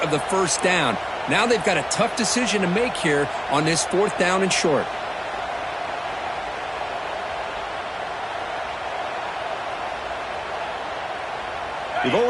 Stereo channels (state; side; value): identical; both; correlation 1.00